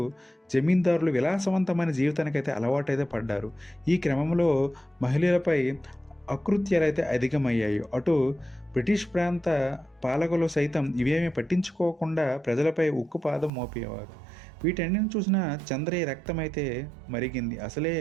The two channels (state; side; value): drops out; left; at 13.5 s